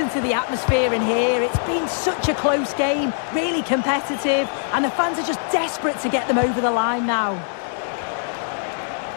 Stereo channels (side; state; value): right; silent; digital silence